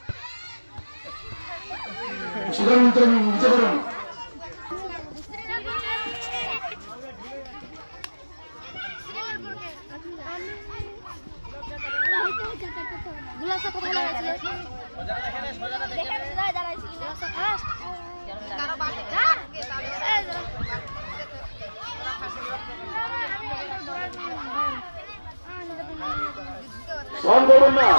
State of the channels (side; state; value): both; inverted; correlation -1.00